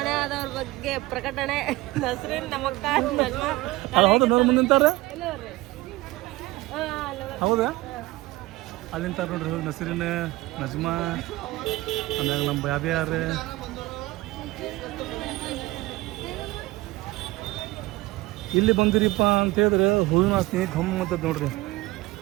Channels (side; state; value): left; quieter; 20.0 dB